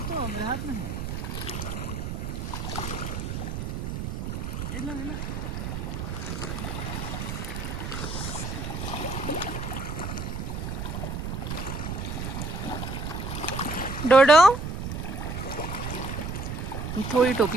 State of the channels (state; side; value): noise; right; rumble, 4 dB below the sound